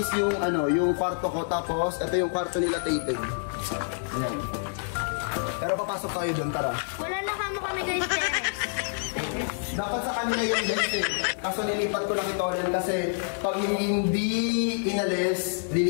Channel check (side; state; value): right; silent; digital silence